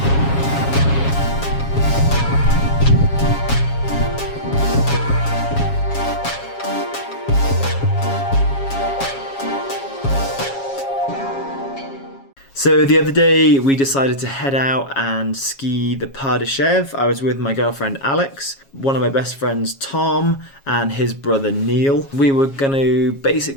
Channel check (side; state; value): right; late; 7.3 ms